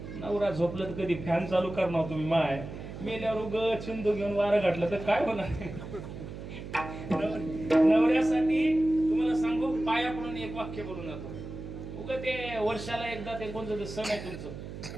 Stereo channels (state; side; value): noise; right; hum, 10 dB below the sound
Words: नवरा झोपलं तर कधी फॅन चालू करणार तुम्ही माय. मेल्यावर उग चिंदू घेऊन वारं घातलं तर काय होणार. नवऱ्यासाठी तुम्हाला सांगू, पाया पडून एक वाक्य बोलून जातो. उग ते वर्षाला एकदा ते कोणतं सण आहे तुमचं,